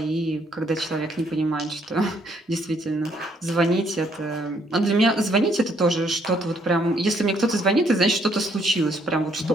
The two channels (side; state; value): both; normal; correlation 0.68